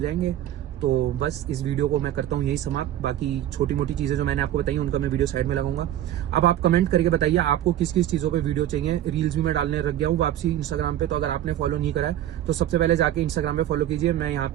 तो बस इस वीडियो को मैं करता हूँ यही समाप्त। बाकी छोटी मोटी चीजें जो मैंने आपको बताई उनका मैं वीडियो साइड में लगाऊंगा। अब आप कमेंट करके बताइए आपको किस किस चीजों पे वीडियो चाहिए। रील्स भी मैं डालने लग गया हूँ वापसी इंस्टाग्राम पे, तो अगर आपने फॉलो नहीं करा है तो सबसे पहले जाके इंस्टाग्राम पे फॉलो कीजिए। मैं यहाँ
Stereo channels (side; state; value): left; quieter; 12.2 dB